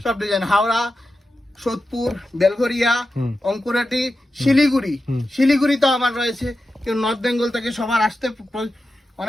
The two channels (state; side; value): normal; both; correlation 0.91